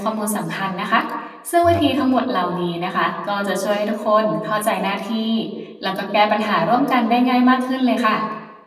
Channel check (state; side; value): identical; both; correlation 1.00